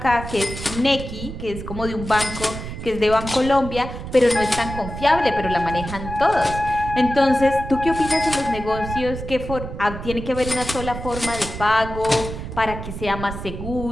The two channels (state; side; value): noise; right; rumble, 8 dB below the sound